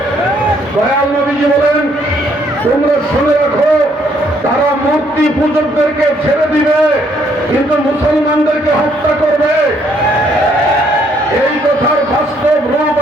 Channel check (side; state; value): both; normal; correlation 0.68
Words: দয়াল নবীজি বলেন, তোমরা শুনে রাখো, তারা মূর্তি পূজকদেরকে ছেড়ে দিবে কিন্তু মুসলমানদেরকে হত্যা করবে। এই কথার বাস্তব রূপ